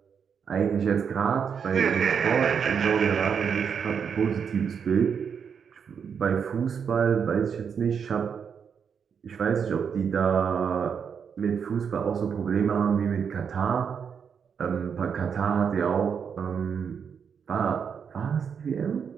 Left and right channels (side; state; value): left; quieter; 6.9 dB